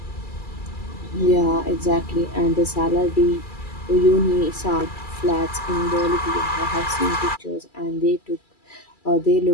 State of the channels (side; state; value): right; late; 2.3 ms